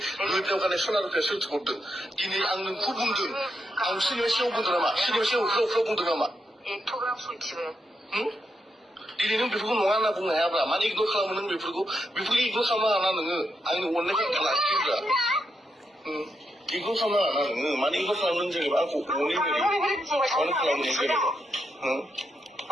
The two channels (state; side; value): normal; both; correlation 0.82